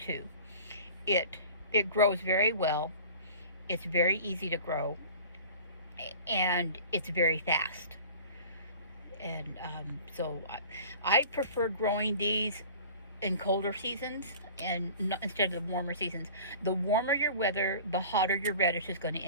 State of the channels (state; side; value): inverted; both; correlation -0.42